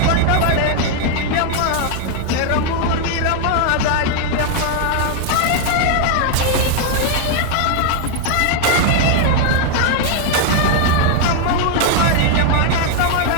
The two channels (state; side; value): different; both; correlation 0.00